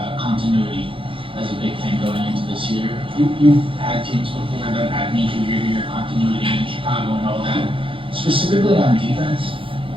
continuity as a big thing going into this year. You've had teams before that had major year-to-year continuity in Chicago and all that. Specifically on defense,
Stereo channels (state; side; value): late; left; 0.25 ms